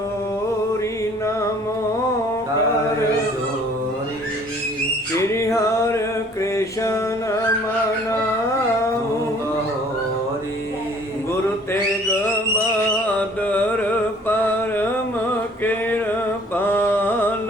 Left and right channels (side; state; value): both; normal; correlation 0.55